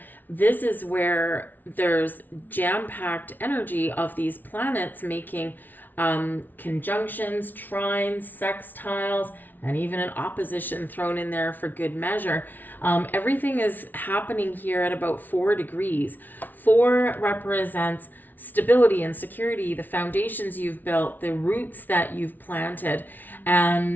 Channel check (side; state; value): right; late; 0.085 ms